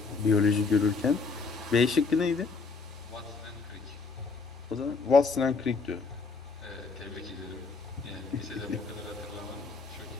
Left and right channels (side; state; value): right; quieter; 4.6 dB